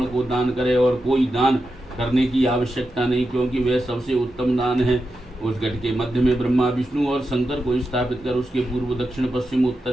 को दान करे। और कोई दान करने की आवश्यकता नहीं, क्योंकि वह सबसे उत्तम दान है। उस घट के मध्य में ब्रह्मा, विष्णु और शंकर को स्थापित कर उसके पूर्व, दक्षिण, पश्चिम,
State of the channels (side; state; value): both; normal; correlation 0.89